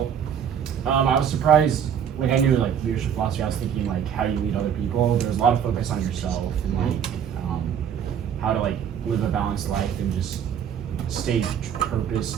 I was surprised. Like I knew leadership philosophy. I was thinking how you lead other people. There was a lot of focus on yourself and how to live a balanced life and just stay purpose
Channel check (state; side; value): quieter; left; 8.5 dB